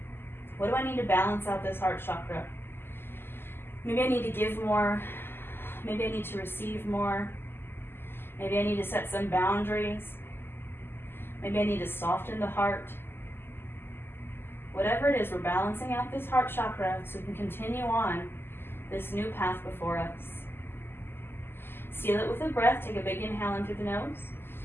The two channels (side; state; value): right; late; 0.11 ms